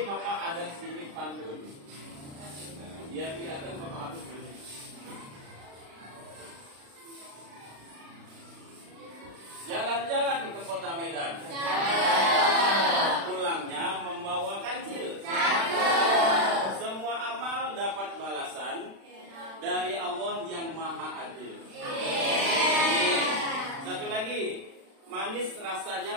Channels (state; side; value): late; left; 36 ms